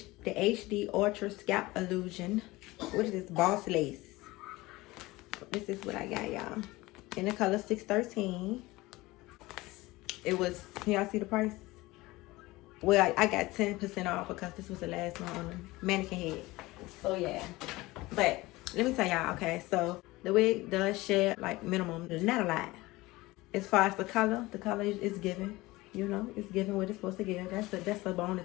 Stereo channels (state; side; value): quieter; right; 20.3 dB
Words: Ultra Scalp Illusion. What is this? Boss lace. This is what I got, y'all. In the color 613. It was, can y'all see the price? Well, I got 10% off because this was the last one on the mannequin head. So yeah. But let me tell y'all, okay, so the wig does share like minimum, not a lot. As far as the color is given. You know, it's giving what it's supposed to give. That's the